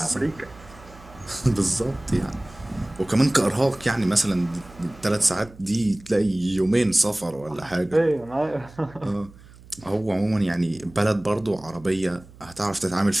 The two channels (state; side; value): noise; right; hum, 22 dB below the sound